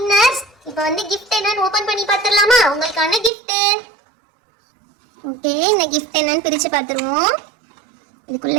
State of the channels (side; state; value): left; drops out; at 3.3 s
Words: இப்போ வந்து gift என்னன்னு ஓபன் பண்ணி பார்த்துடலாமா? உங்களுக்கான gift. ஓகே, இந்த gift என்னன்னு பிரிச்சு பார்த்துருவோம்.